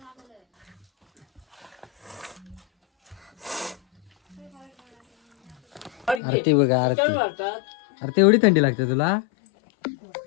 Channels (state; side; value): drops out; right; at 6.2 s